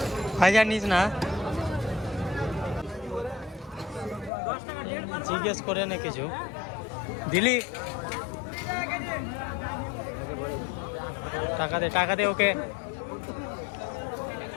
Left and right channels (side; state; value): right; drops out; at 4.3 s